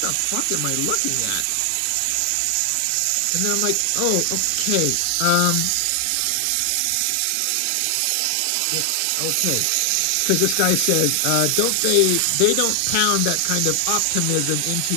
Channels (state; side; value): different; both; correlation 0.00